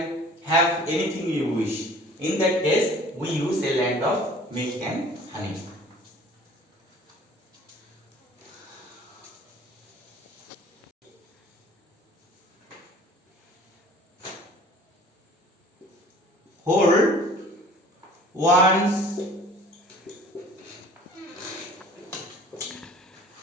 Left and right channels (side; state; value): both; normal; correlation 0.48